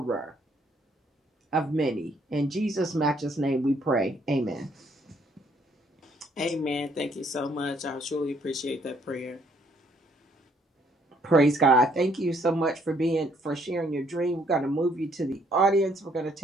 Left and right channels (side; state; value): both; normal; correlation 0.67